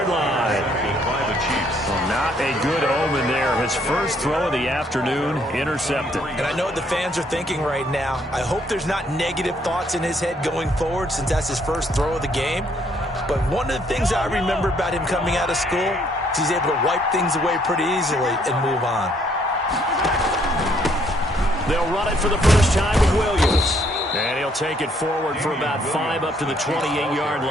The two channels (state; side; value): normal; both; correlation 0.67